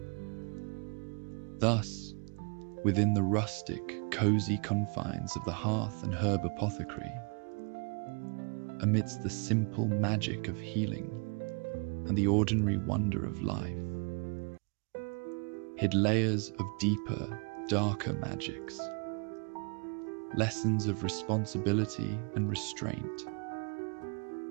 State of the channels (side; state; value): left; quieter; 36.4 dB